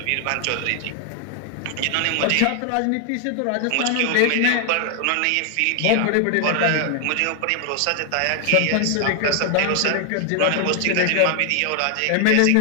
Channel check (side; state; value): both; different; correlation 0.00